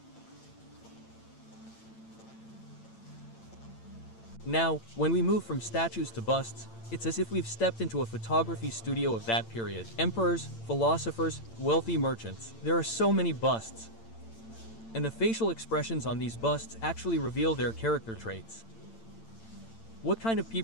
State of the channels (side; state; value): right; late; 8.9 ms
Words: Now, when we move from statues to busts, it's as if we've stepped into a photography studio of that period. Emperors, philosophers, wealthy merchants. There are so many busts. And the facial expressions on these busts actually reveal their character traits. What kind of